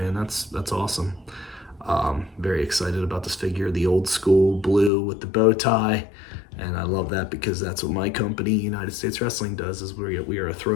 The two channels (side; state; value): right; drops out; at 4.9 s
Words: that's awesome. Very excited about this figure, the old school blue with the bow tie. And I love that because that's what my company, United States Wrestling, does, is we are a